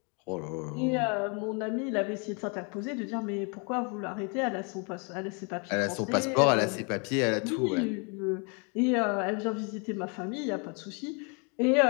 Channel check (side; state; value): right; quieter; 34.7 dB